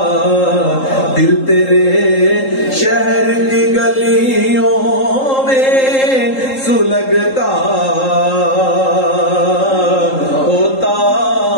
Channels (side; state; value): right; late; 3.8 ms